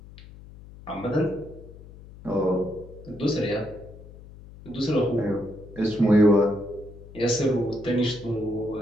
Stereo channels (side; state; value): left; noise; hum, 18 dB below the sound